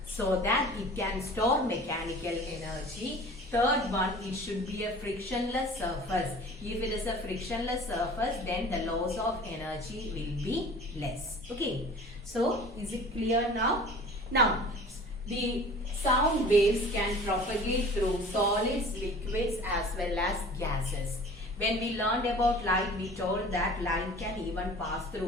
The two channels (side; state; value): both; normal; correlation 0.44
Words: so that it can store mechanical energy. third one, it should be a frictionless surface. If it is a frictionless surface, then the loss of energy will be less. Okay. So, is it clear now? Now, the sound waves can propagate through solids, liquids as well as gases. When we learned about light, we told that light can even pass